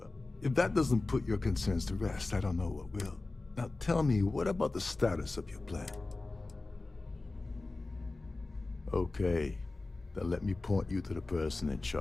a... If that doesn't put your concerns to rest, I don't know what will. Now tell me, what about the status of your plan? Okay, then let me point you to the person in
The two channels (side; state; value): right; quieter; 3.3 dB